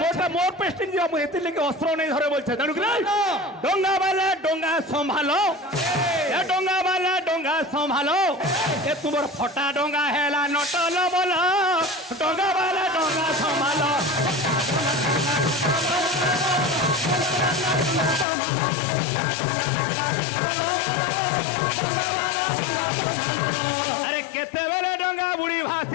মোটা মোর পেস্টিং দিয়া মু হেতি লাগি অস্ত্র নাই ধরে বলছে জানো কি ডঙ্গা বালা ডঙ্গা সম্ভালো এ ডঙ্গা বালা ডঙ্গা সম্ভালো এ তোমার ফটা ডঙ্গা হেলা নটল বল ডঙ্গা বালা ডঙ্গা সম্ভালো আরে কেতেবেলে ডঙ্গা বুড়ি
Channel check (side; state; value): right; drops out; at 18.2 s